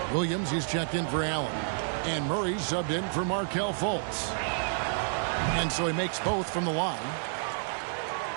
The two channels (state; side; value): silent; left; digital silence